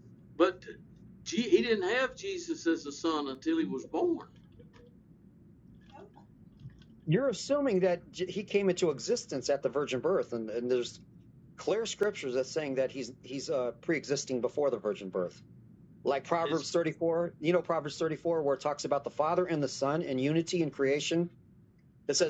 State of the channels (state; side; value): identical; both; correlation 1.00